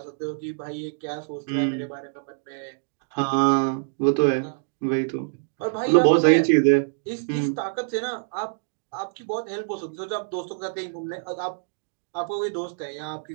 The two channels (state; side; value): silent; left; digital silence